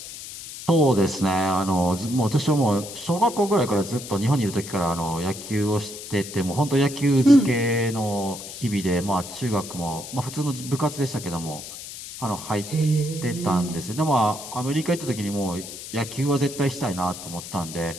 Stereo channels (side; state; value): left; noise; hiss, 11 dB below the sound